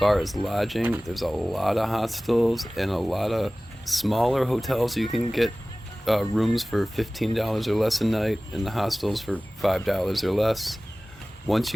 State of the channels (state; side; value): normal; both; correlation 0.98